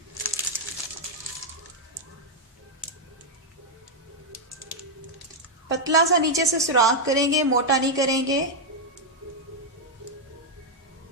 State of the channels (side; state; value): both; normal; correlation -0.01